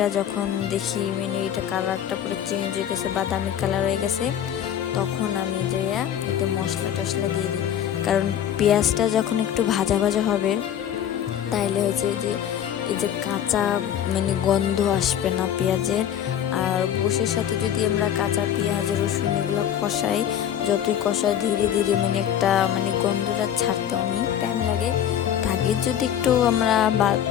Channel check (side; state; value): right; quieter; 9.9 dB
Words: যখন দেখি মানে এটা কালারটা পুরো চেঞ্জ হয়ে গেছে, বাদামি কালার হয়ে গেছে, তখন আমি যে এতে মশলা টশলা দিয়ে দিই। কারণ পেঁয়াজটা যখন একটু ভাজা ভাজা হবে, তাইলে হয়েছে যে এই যে কাঁচা মানে গন্ধ আসবে না পেঁয়াজের। আর গোশের সাথে যদি আমরা কাঁচা পেঁয়াজ, রসুন এগুলো কষাই, যতই কষাই ধীরে ধীরে মানে একটা মানে গন্ধটা ছাড়তে অনেক টাইম লাগে। আগে যদি একটু আমরা